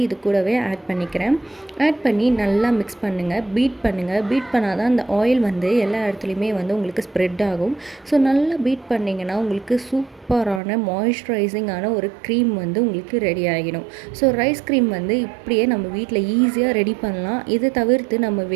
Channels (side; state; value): left; drops out; at 10.6 s